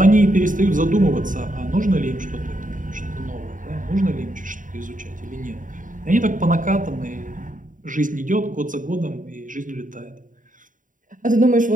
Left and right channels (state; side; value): late; left; 0.38 ms